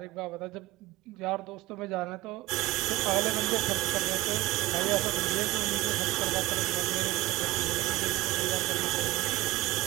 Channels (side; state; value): left; quieter; 18.2 dB